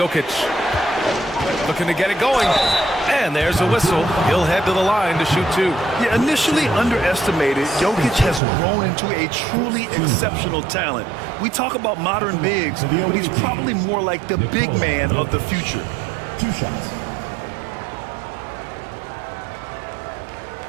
Looking to get it going. And there's a whistle. He'll head to the line to shoot 2. Yeah, initially underestimated, Jokic has grown into a truly exceptional talent. We talk about modern bigs, but he's probably more like the big man of the future. 2 shots.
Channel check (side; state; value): left; drops out; at 8.4 s